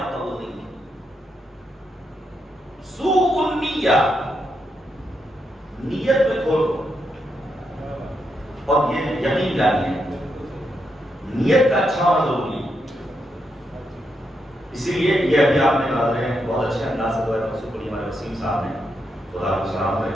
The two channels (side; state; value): both; normal; correlation 0.82